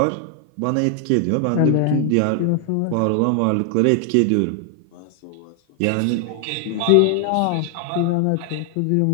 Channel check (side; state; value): both; different; correlation 0.00